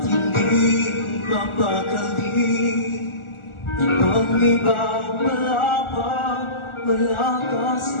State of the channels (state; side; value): late; right; 1.4 ms